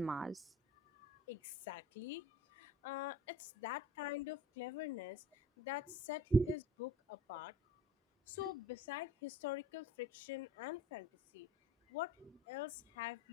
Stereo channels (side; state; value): both; normal; correlation 0.47